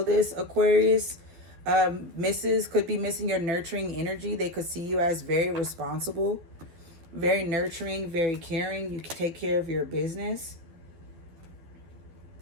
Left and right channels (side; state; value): left; late; 12 ms